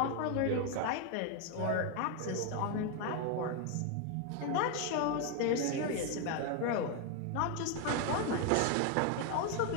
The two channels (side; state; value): both; different; correlation 0.01